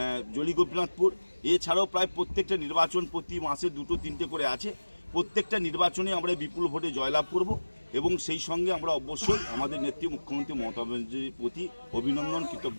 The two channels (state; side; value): inverted; both; correlation -1.00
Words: জলি গোপীনাথপুর। এছাড়াও প্রায় প্রত্যেকটা নির্বাচন প্রতি মাসে 2-3টে করে আছে। প্রত্যেকটা নির্বাচনে আমরা বিপুল ভোটে জয়লাভ করব এবং সেই সঙ্গে আমরা অবশ্যই আমাদের নেত্রী মুখ্যমন্ত্রী মমতা ব্যানার্জির প্রতি অভিনন্দন,